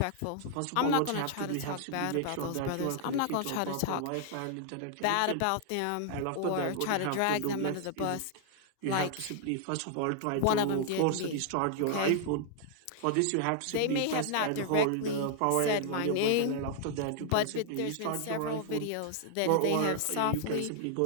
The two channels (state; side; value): different; both; correlation 0.00